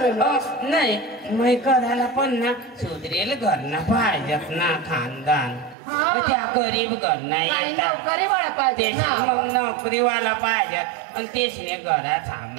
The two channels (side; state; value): left; drops out; at 5.8 s